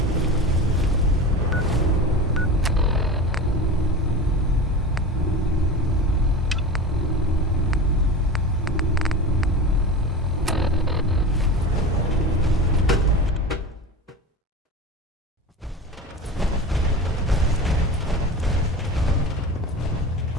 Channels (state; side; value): normal; both; correlation 0.30